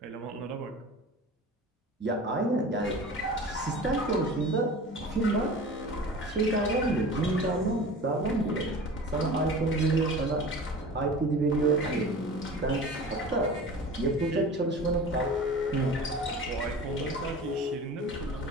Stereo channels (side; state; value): both; normal; correlation 0.37